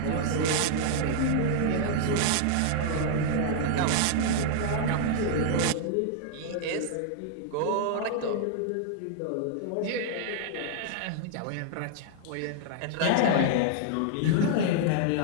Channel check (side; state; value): both; different; correlation -0.01